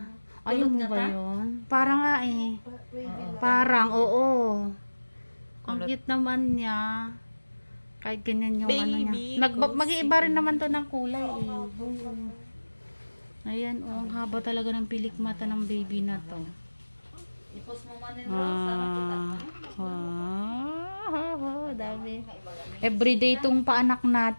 Ayun mo ba yun? Parang nga eh. Parang, oo. Ang cute naman niya. Kahit ganyan yung ano niya. Mag-iiba rin naman to ng kulay eh. Ayan oh, ang haba talaga ng pilik mata ng baby na to. I-post mo man yung Rose. Dami. Everyday itong paanak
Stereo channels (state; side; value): inverted; both; correlation -1.00